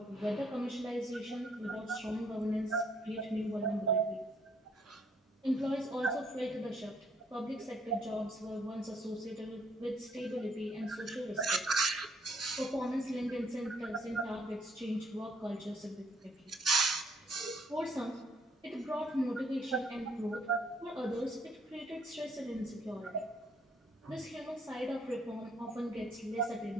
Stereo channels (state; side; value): normal; both; correlation 0.67